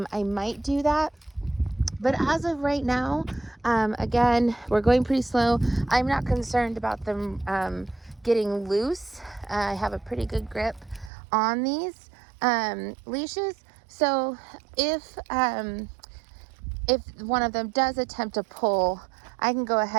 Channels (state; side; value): drops out; left; at 11.1 s